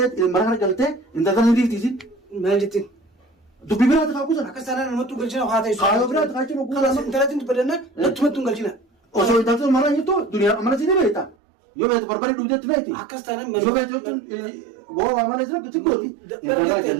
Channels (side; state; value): left; drops out; at 11.4 s